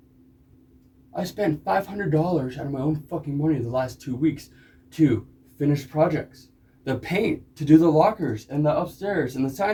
I spent $500 out of my own fucking money the last 2 weeks to finish projects. The paint, to do the lockers and the upstairs and the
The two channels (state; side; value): identical; both; correlation 1.00